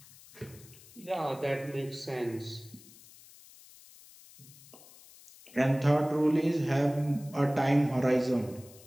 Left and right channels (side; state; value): left; noise; hiss, 22 dB below the sound